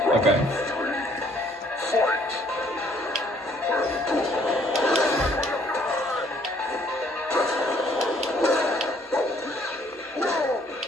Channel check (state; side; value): normal; both; correlation 0.63